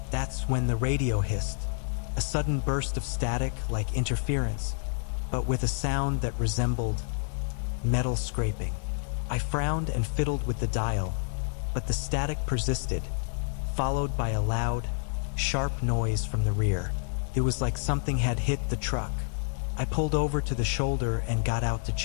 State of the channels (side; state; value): right; silent; digital silence